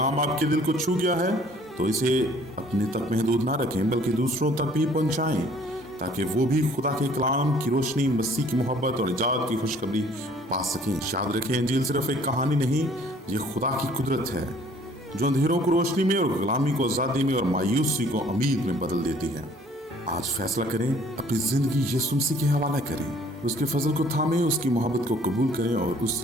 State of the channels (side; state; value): both; normal; correlation 0.56